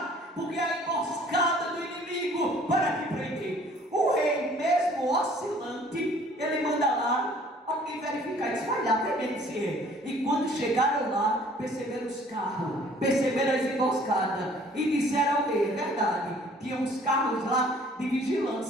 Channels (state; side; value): normal; both; correlation 0.55